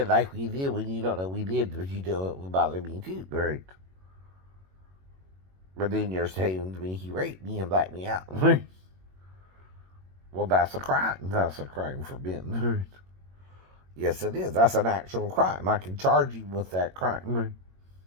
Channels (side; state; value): left; late; 21 ms